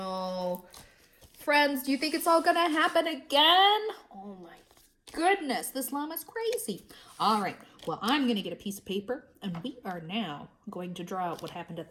Friends, do you think it's all gonna happen again? Oh my goodness, this llama's crazy. All right, well, I'm gonna get a piece of paper, and we are now going to draw out what happened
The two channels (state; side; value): identical; both; correlation 1.00